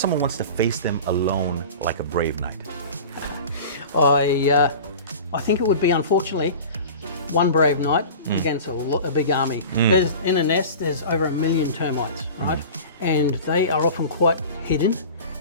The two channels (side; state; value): both; inverted; correlation -0.36